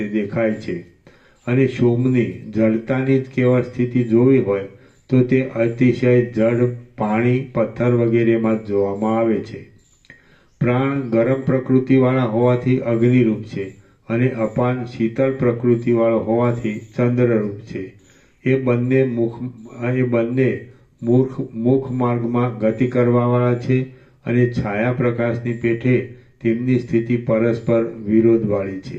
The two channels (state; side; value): identical; both; correlation 1.00